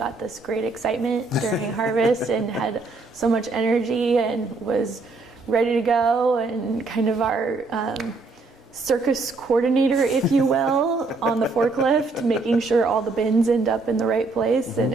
this great excitement during harvest and had so much energy and was ready to go, and kind of our circus coordinator, if you will, on the forklift, making sure all the bins end up in the right place and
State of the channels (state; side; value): quieter; left; 3.6 dB